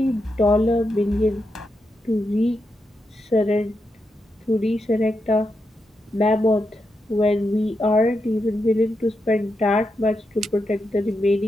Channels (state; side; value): normal; both; correlation 0.85